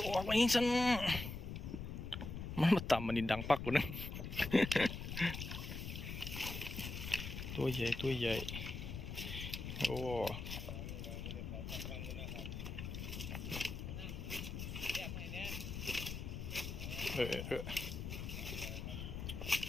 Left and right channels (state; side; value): noise; left; rumble, 6 dB below the sound